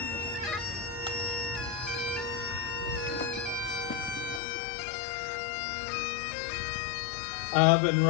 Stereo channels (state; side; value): drops out; right; at 4.4 s